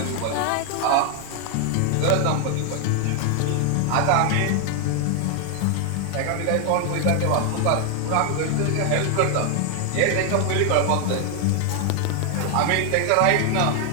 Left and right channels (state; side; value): different; both; correlation 0.00